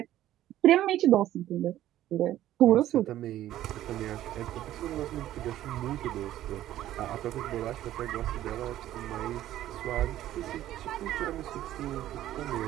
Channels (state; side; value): quieter; left; 13.3 dB